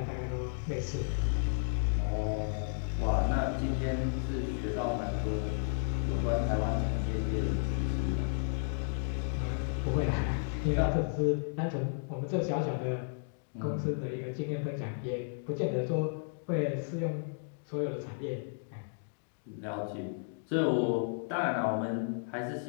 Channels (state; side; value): silent; right; digital silence